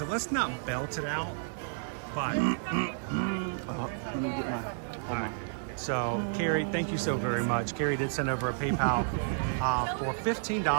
let's not belt it out, but... All right. So, Carrie, thank you so very much. Carrie did send over a PayPal for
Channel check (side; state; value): left; silent; digital silence